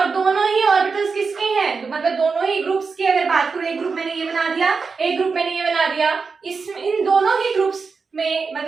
दोनों ही ऑर्बिटल्स किसके हैं, तो मतलब दोनों ही ग्रुप्स की अगर बात करूं, एक ग्रुप मैंने ये बना दिया, एक ग्रुप मैंने ये बना दिया, इन दोनों ही ग्रुप्स में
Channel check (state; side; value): quieter; left; 4.9 dB